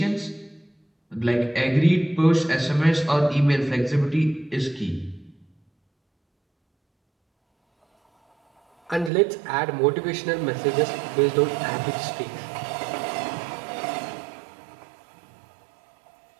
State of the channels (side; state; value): left; drops out; at 9.1 s